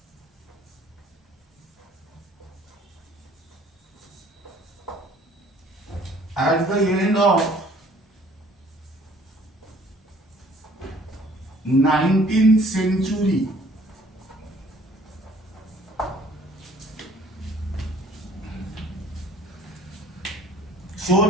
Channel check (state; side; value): normal; both; correlation 0.56